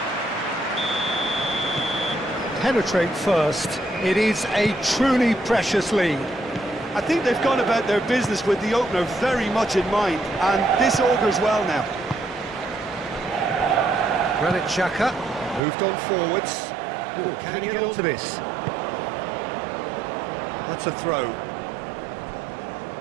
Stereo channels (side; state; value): left; drops out; at 15.6 s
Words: Penetrate first. It is a truly precious lead. I think they've gone about their business with the opener very much in mind, and this augurs well now. Granit Xhaka moved on forwards. Ooh, can he get onto this? That's a throw.